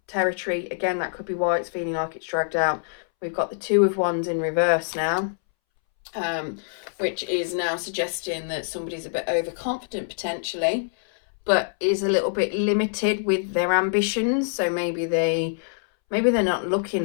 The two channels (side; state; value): right; silent; 62 dB below the other